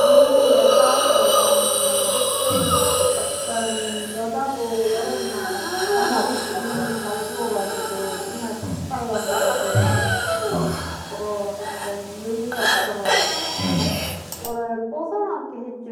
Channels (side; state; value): both; identical; correlation 1.00